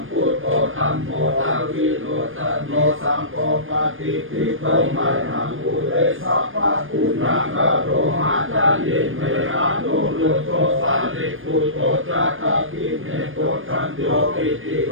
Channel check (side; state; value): left; late; 0.59 ms